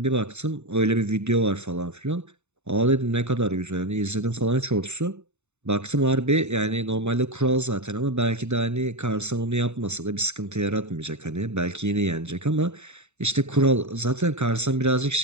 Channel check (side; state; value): left; late; 0.82 ms